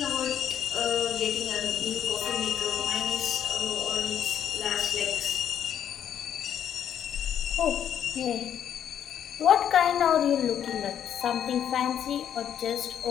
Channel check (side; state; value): right; quieter; 9.4 dB